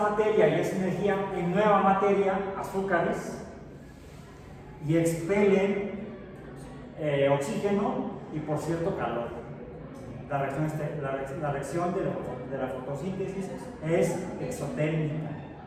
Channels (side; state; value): both; identical; correlation 1.00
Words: y esa energía en nueva materia, azúcares, y expelen oxígeno y, por cierto, calor. La reacción de la fotosíntesis es exotérmica.